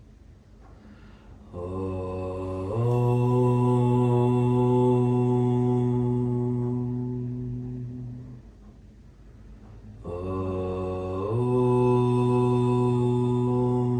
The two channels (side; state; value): both; identical; correlation 1.00